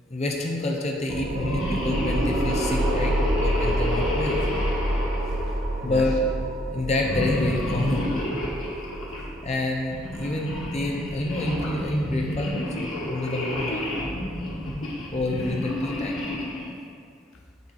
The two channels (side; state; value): both; normal; correlation 0.68